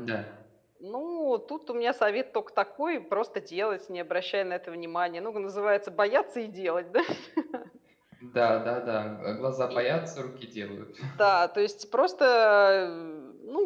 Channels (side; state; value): both; identical; correlation 1.00